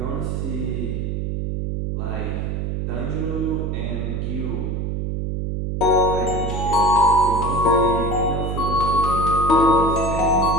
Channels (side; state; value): right; noise; hum, 2 dB below the sound